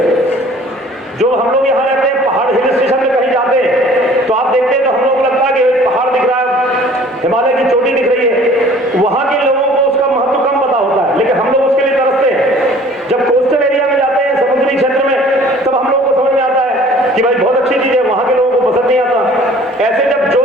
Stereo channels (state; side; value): normal; both; correlation 0.51